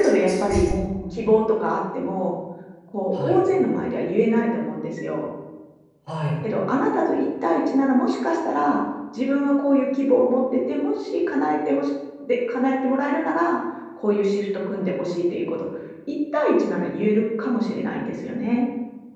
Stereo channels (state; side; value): identical; both; correlation 1.00